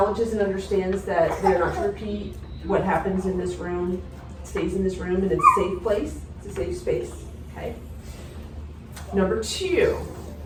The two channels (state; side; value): identical; both; correlation 1.00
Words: and understands that they're not to repeat what happens in this room, stays in this room, and it's a safe place, it's a safe space, okay? Number two,